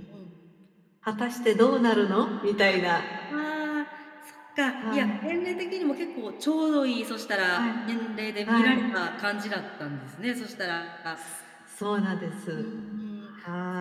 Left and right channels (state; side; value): identical; both; correlation 1.00